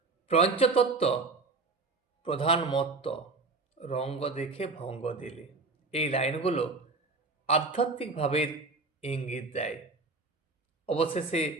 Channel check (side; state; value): left; quieter; 3.8 dB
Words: পঞ্চতত্ত্ব প্রধান মত্ত, রঙ্গ দেখে ভঙ্গ দিলে। এই লাইনগুলো আধ্যাত্মিক ভাবের ইঙ্গিত দেয়। অবশেষে